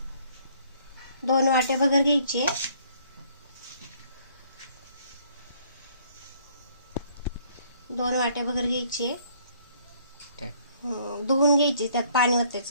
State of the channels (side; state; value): both; inverted; correlation -0.62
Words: 2 वाटे भगर घ्यायचे। धुवून घ्यायची, त्यात पाणी